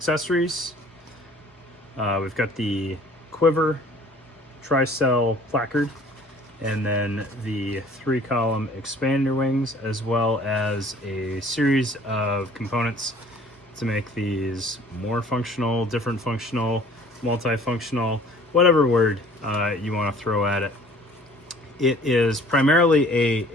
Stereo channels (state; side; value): normal; both; correlation 0.52